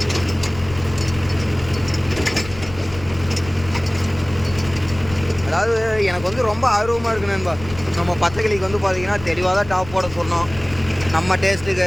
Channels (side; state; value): left; noise; rumble, 14 dB below the sound